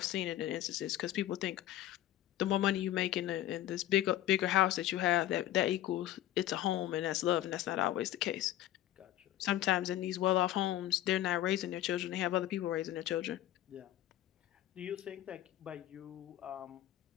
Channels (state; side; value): quieter; right; 13.5 dB